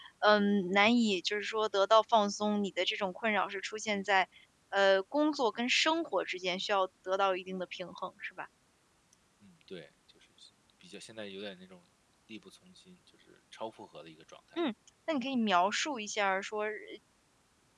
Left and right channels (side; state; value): both; identical; correlation 1.00